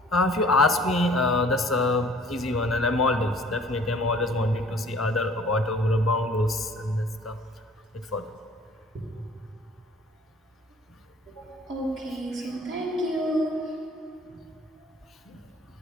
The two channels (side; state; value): both; normal; correlation 0.52